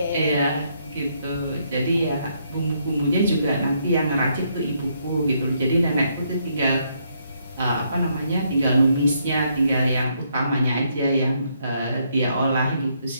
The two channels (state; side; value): inverted; both; correlation -0.73